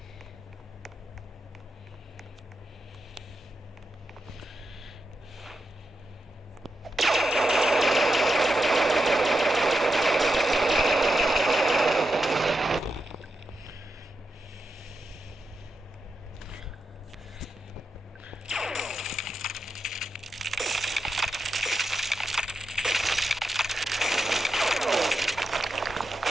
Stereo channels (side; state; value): both; normal; correlation 0.87